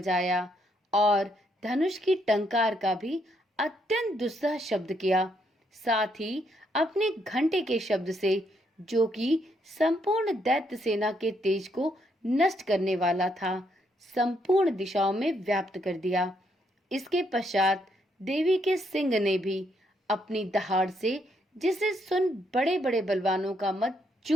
और धनुष की टंकार का भी अत्यंत दुस्सह शब्द किया। साथ ही अपने घंटे के शब्द से, जो कि संपूर्ण दैत्य सेना के तेज को नष्ट करने वाला था, संपूर्ण दिशाओं में व्याप्त कर दिया। इसके पश्चात देवी के सिंह ने भी अपनी दहाड़ से, जिसे सुन बड़े बड़े बलवानों का मत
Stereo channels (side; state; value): both; normal; correlation 0.74